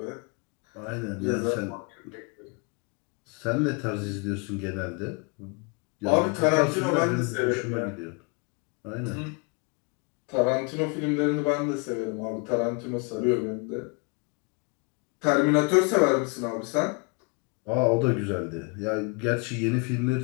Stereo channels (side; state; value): right; quieter; 32.7 dB